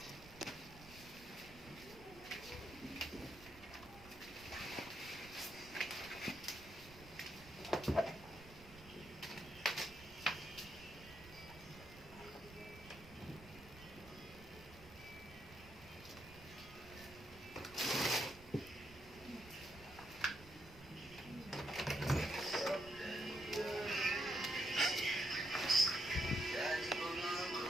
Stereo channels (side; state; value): right; noise; rumble, 19 dB below the sound